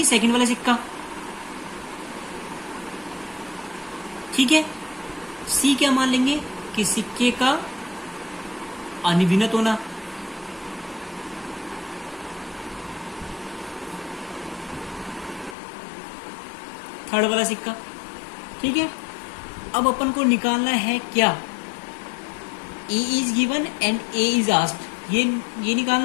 सेकंड वाला सिक्का, ठीक है। सी क्या मान लेंगे कि सिक्के का अनिविनत होना, थर्ड वाला सिक्का, ठीक है। अब अपन को निकालना है क्या, A is given and A is asked, ये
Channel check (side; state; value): right; drops out; at 15.6 s